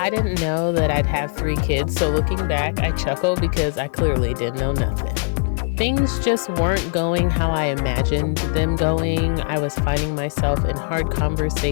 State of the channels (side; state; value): right; silent; digital silence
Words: didn't know that I'd have 3 kids, so looking back, I chuckle because I clearly didn't know nothing. Things just weren't going how I imagined them going. I was finding myself in hard